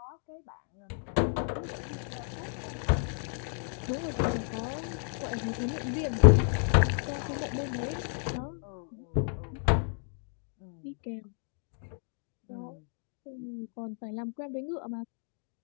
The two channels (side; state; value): right; silent; 56 dB below the other